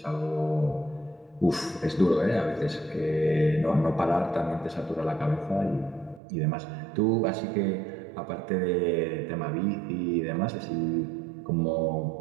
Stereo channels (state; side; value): drops out; left; at 6.2 s